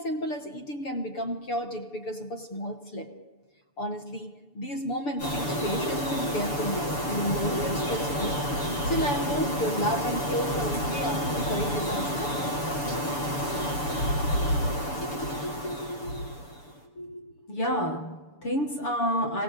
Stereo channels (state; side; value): late; right; 6.9 ms